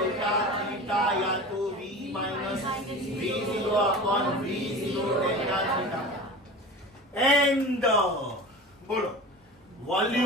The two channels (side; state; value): both; normal; correlation 0.34